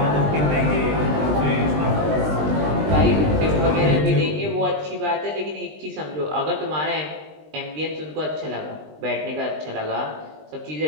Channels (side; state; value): left; late; 20 ms